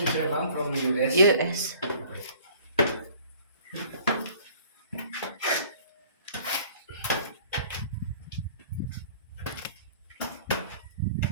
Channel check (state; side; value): inverted; both; correlation -0.51